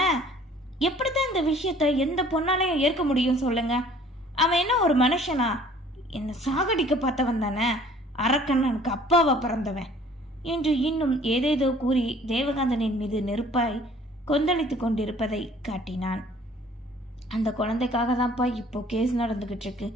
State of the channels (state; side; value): normal; both; correlation 0.54